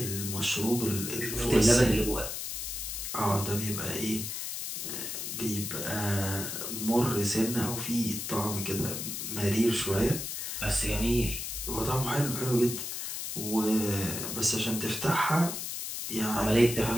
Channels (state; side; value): noise; left; hiss, 5 dB below the sound